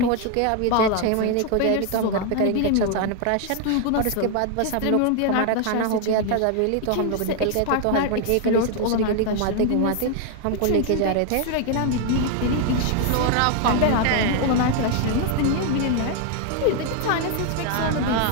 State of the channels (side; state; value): both; different; correlation 0.00